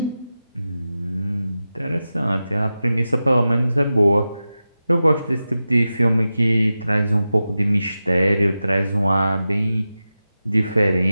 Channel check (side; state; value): both; inverted; correlation -0.93